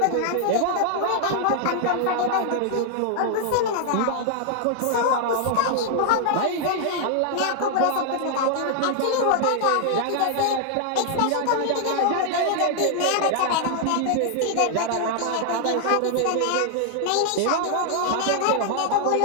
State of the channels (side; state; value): both; different; correlation 0.00